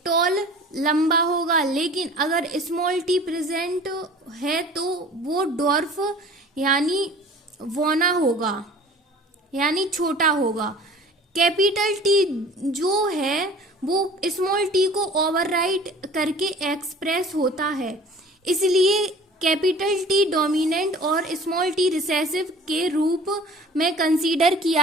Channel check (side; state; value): both; normal; correlation 0.46